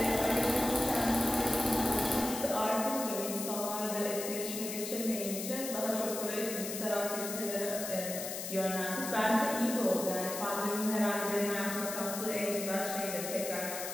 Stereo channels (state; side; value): noise; left; hiss, 6 dB below the sound